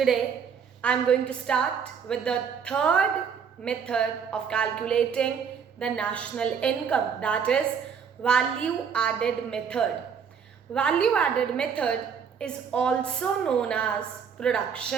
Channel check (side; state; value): left; quieter; 6.9 dB